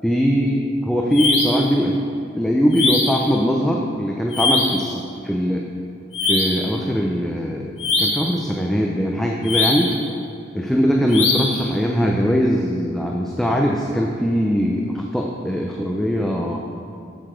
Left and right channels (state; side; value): normal; both; correlation 0.73